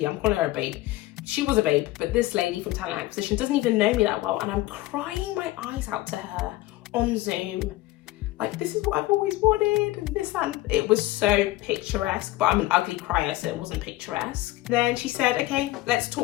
I'm calling her a babe. She was a babe, but this lady from talent acquisition doesn't even know me that well. And I'm crying my eyes out to her on Zoom. Like, this is what I've always wanted, and this, and it was so picturesque, but I'm an ugly crier, so it wasn't picturesque. Then she said, okay, let's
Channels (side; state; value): right; quieter; 17.6 dB